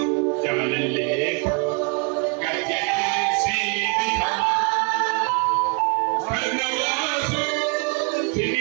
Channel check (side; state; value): left; quieter; 34.9 dB